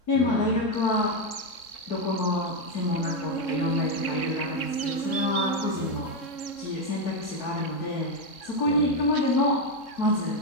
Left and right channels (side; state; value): right; late; 3.6 ms